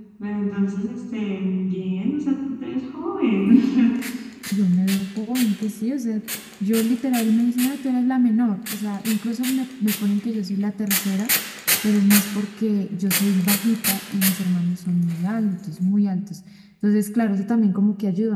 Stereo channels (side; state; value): both; identical; correlation 1.00